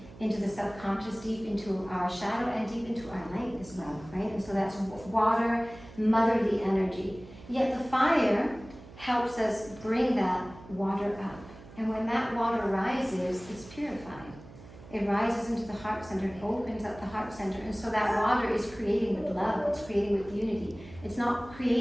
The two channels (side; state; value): right; noise; hum, 18 dB below the sound